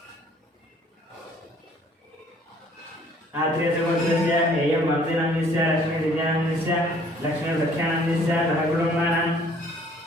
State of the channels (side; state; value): both; normal; correlation 0.58